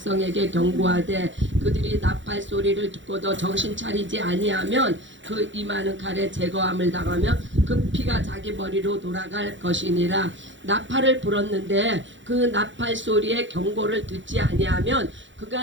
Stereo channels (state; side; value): late; left; 0.54 ms